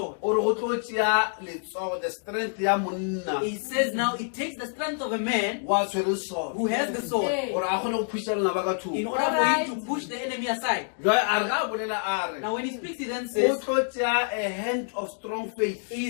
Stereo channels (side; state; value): right; silent; 60 dB below the other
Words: O re go tlo tšea letsogo the strength ya monna He says now it takes the strength of a man wa tshwere soto. who has the sword Gore a kgone go phusha lena ba ka in thoko. order for him to push the enemy aside. Jwale a re ga a bolela a re Now when he speaks, he then o says, tlo tšea a hand of strong faith